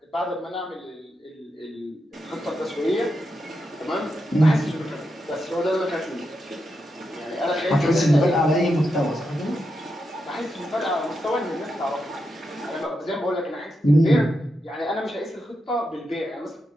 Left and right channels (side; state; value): both; normal; correlation 0.85